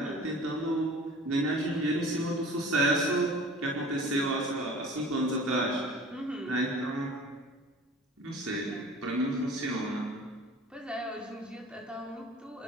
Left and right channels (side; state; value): both; normal; correlation 0.44